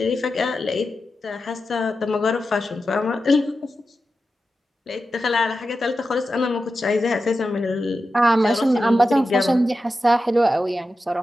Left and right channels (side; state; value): both; normal; correlation 0.91